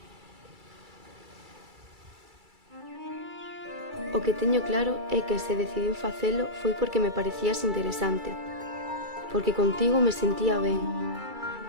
O que teño claro é que se decidín facelo foi porque me parecías interesante, porque contigo me sentía ben,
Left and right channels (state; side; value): late; left; 2.3 ms